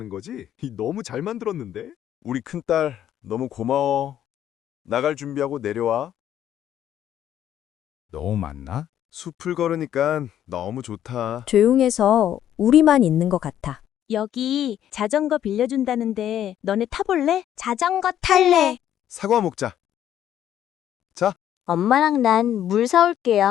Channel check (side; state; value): right; quieter; 10.9 dB